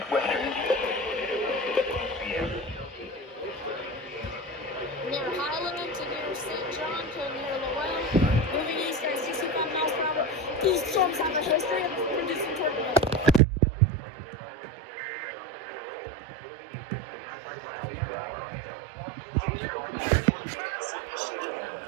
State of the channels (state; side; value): drops out; left; at 13.4 s